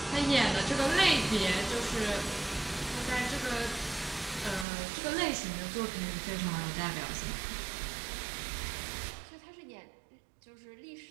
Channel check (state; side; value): drops out; left; at 4.7 s